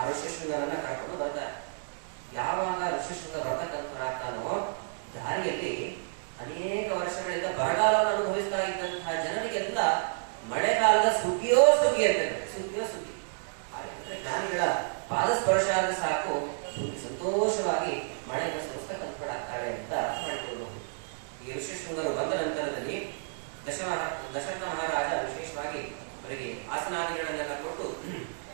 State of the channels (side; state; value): left; silent; digital silence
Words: ಋಷಿಶೃಂಗರನ್ನ ಕರ್ಕೊಂಡು ಬರ್ತಾರೆ. ಯಾವಾಗ ಋಷಿಶೃಂಗ ಬರ್ತಕ್ಕಂಥವರಾಗ್ತಾನೋ, ದಾರಿಯಲ್ಲಿ ಅನೇಕ ವರ್ಷಗಳಿಂದ ಬರಗಾಲವನ್ನು ಅನುಭವಿಸ್ತಾ ಇದ್ದಂತಹ ಜನರಿಗೆಲ್ಲ ಮಳೆಗಾಲದ ಸುಗ್ಗಿಯೋ ಸುಗ್ಗಿ ಅಂತೇಳಿ, ಸುಗ್ಗಿಯೋ ಸುಗ್ಗಿ. ಜ್ಞಾನಿಗಳ ಪಾದ ಸ್ಪರ್ಶ ಆದ್ರೆ ಸಾಕು, ಸಂತೋಷವಾಗಿ ಮಳೆಯನ್ನು ಸುರಿಸ್ತಕ್ಕಂಥವರಾಗ್ತಾಳೆ ಅಂತ ಅರ್ಥ ಮಾಡಿಕೊಳ್ಳಬಹುದು. ಈ ಋಷಿಶೃಂಗರು ಬಂದ ನಂತರದಲ್ಲಿ ದಶರಥ ಮಹಾರಾಜ ವಿಶೇಷವಾಗಿ ಅವರಿಗೆ ಆಸನಾದಿಗಳನ್ನೆಲ್ಲ ಕೊಟ್ಟು